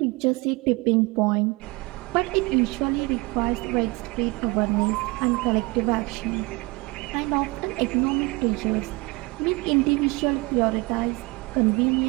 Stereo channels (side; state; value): left; quieter; 25.5 dB